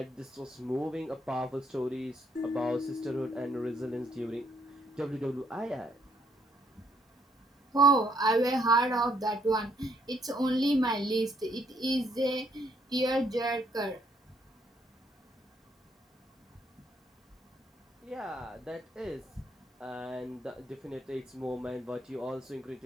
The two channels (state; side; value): normal; both; correlation 0.70